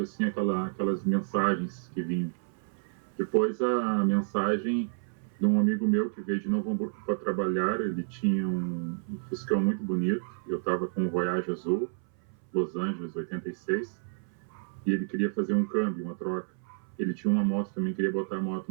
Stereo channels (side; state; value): left; silent; 58 dB below the other